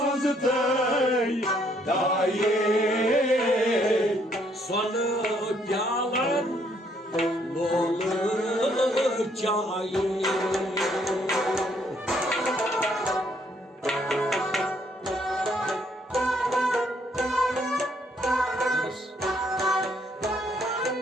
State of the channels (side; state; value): both; normal; correlation 0.68